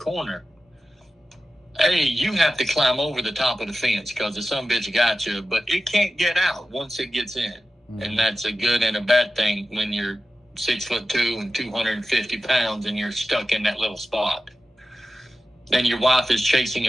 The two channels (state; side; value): normal; both; correlation 0.94